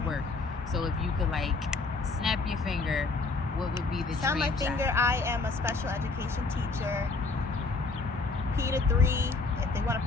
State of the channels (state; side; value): quieter; right; 3.8 dB